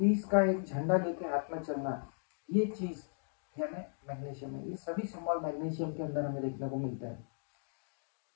का एक झंडा लेके हाथ में चलना, ये चीज यानी मैग्नीशियम है। ये सभी सिंबल मैग्नीशियम के अंदर हमें देखने को मिलता है।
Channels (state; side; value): silent; right; digital silence